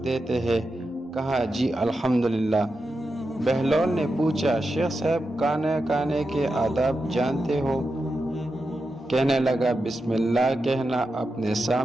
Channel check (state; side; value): normal; both; correlation 0.89